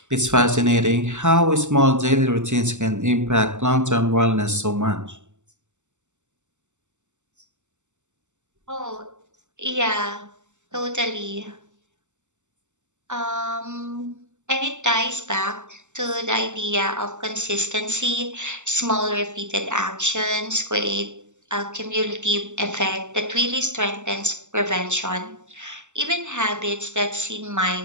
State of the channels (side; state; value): left; late; 0.84 ms